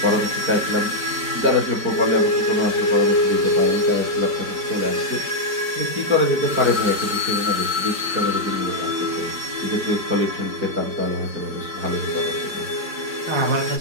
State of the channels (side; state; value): left; late; 4.7 ms